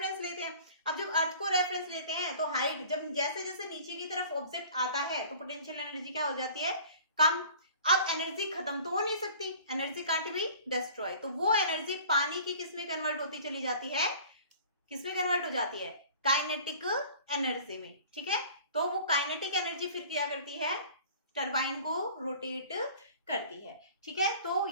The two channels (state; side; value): inverted; both; correlation -0.46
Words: लेते हैं। अब जब अर्थ को रेफरेंस लेते हैं तो हाइट, जब जैसे जैसे नीचे की तरफ ऑब्जेक्ट आता है तो पोटेंशियल एनर्जी क्या हो जाती है, कम। अब एनर्जी खत्म तो हो नहीं सकती, एनर्जी कांट बी डिस्ट्रॉय, तो वो एनर्जी पानी की किस में कन्वर्ट होती चली जाती है, किस में कन्वर्ट हो जाती है, काइनेटिक एनर्जी में। ठीक है, तो वो काइनेटिक एनर्जी फिर क्या करती है, टरबाइन को रोटेट करती है। ठीक है, तो